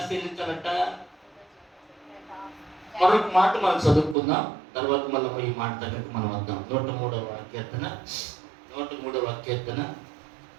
చెల్లించాలంట? మరొక మాట మనం చదువుకుందాం, తర్వాత మళ్ళీ ఈ మాట దగ్గరకు మనం వద్దాం. 103వ కీర్తన 103వ కీర్తన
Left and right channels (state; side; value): drops out; left; at 4.2 s